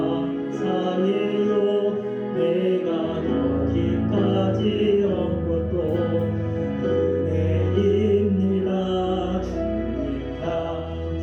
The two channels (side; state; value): both; identical; correlation 1.00